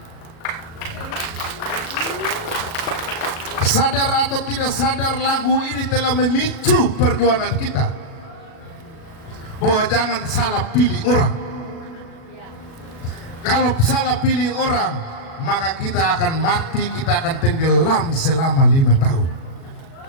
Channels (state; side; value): late; right; 37 ms